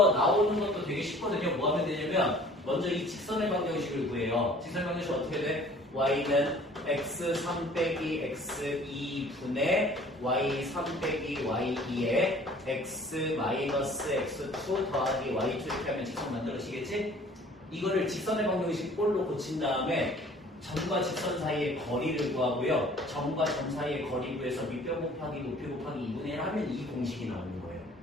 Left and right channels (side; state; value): both; normal; correlation 0.51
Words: 나오는 것도 되게 쉽거든요. 뭐 하면 되냐면 먼저 이 직선의 방정식을 구해요. 직선의 방정식 어떻게 돼? y는 x3 빼기 x2분의 y3 빼기 y2에 x 마이너스 x2 더하기 y2 이렇게 하면 직선 만들어지겠지? 이거를 직선의 방정식 꼴로 고친 다음에 점과 직선 사이의 거리를 구하고요. 점과 점 사이의 거리 구해서 밑변 곱하기 높이 곱하기 2분의 1 하면 이 공식이 나오는 거예요.